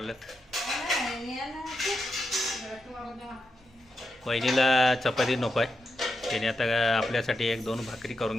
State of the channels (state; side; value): normal; both; correlation 0.86